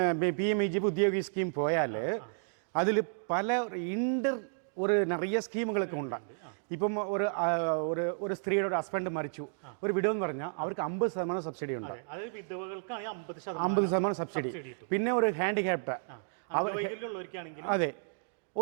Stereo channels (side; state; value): left; silent; digital silence